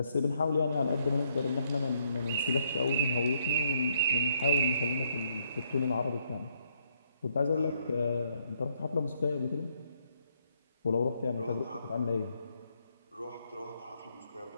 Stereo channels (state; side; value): inverted; both; correlation -0.72